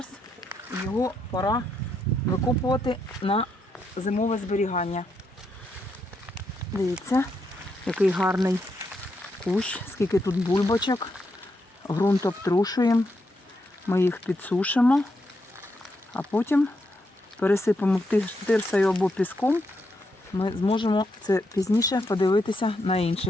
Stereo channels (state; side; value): normal; both; correlation 0.81